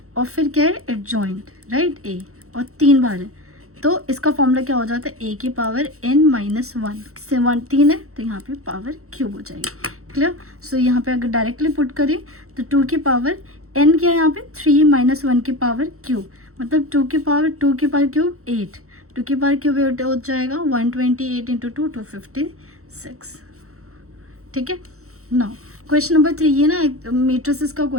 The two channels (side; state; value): left; late; 0.64 ms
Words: और फिर क्या है एडजॉइंट, राइट, ए, और 3 बार है, तो इसका फॉर्मूला क्या हो जाता है, a की पावर n - 1 से 1 3 है, तो यहाँ पे पावर क्यूब हो जाएगी, क्लियर। सो यहाँ पे अगर डायरेक्टली पुट करें तो 2 की पावर n क्या है यहाँ पे 3 माइनस 1 की पावर क्यूब, मतलब 2 की पावर क्यूब 8, 2 की पावर क्यूब 8 हो जाएगा 128 इंटू 2 256। ठीक है। नाउ क्वेश्चन नंबर 3, ये ना मैट्रिसेस का